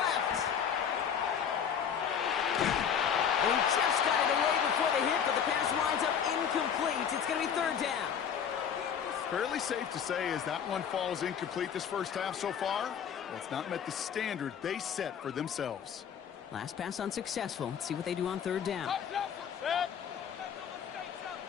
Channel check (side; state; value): right; quieter; 7.9 dB